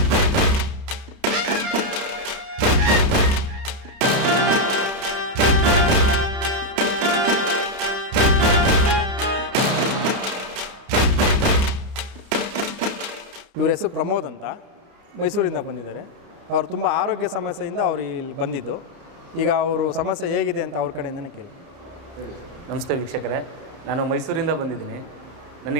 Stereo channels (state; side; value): late; left; 30 ms